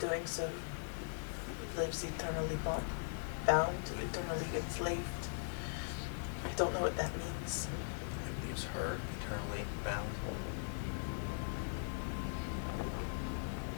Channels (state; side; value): silent; right; digital silence